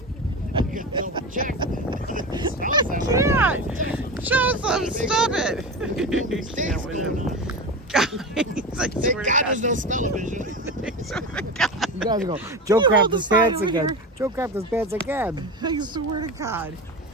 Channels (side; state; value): both; normal; correlation 0.24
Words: I can double check. It smells that way. Can't. Joseph, stop it. You can't with him. Guys, I Thank swear to God there's no smell-o-vision. I swear to God. You guys go, Joe You crapped hold his the sign pants over again. here. Joe crapped his pants again. I swear to God.